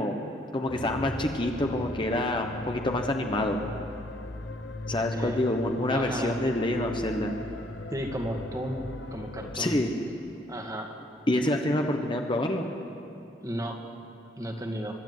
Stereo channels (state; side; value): normal; both; correlation 0.66